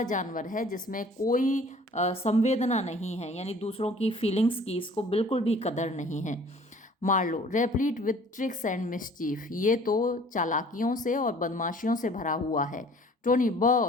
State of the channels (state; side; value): normal; both; correlation 0.52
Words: जानवर है जिसमें कोई संवेदना नहीं है, यानी दूसरों की फीलिंग्स की इसको बिल्कुल भी कदर नहीं है। Marlow, replete with tricks and mischief, ये तो चालाकियों से और बदमाशियों से भरा हुआ है। टोनी,